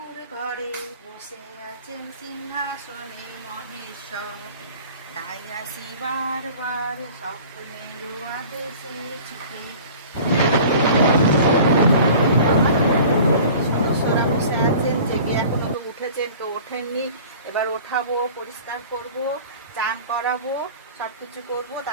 ঘরে, বসে আছেন সিংহাসনে মহেশ্বর। তাই আসি বারবার স্বপ্নের আদেশে ছুটে। সদস্যরা বসে আছেন, জেগে এখনো তো উঠেছেন, কেউ ওঠেননি। এবার ওঠাবো, পরিষ্কার করব, চান করাবো, সবকিছু করব।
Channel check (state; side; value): inverted; both; correlation -0.44